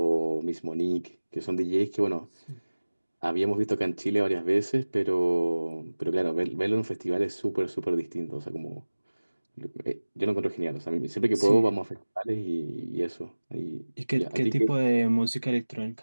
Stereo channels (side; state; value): both; inverted; correlation -1.00